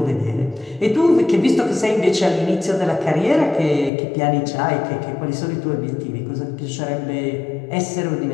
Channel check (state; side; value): drops out; right; at 3.9 s